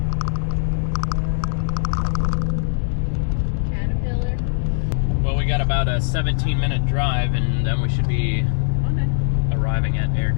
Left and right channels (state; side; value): silent; right; digital silence